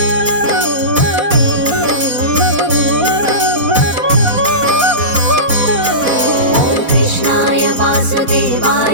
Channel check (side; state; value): left; late; 4.2 ms